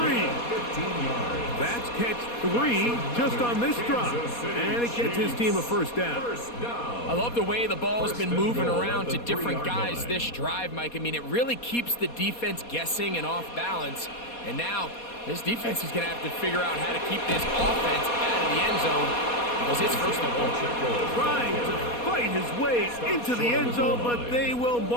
15 yards. That's catch 3 just on this drive. And it gets his team a first down. I love the way the ball's been moving around to different guys this drive, Mike. I mean, it really keeps the defense guessing and off balance. And now this defense is going to have to figure out how to keep this offense out of the end zone because it's first and goal. Trying to fight his way into the end zone, but they will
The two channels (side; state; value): right; late; 4.2 ms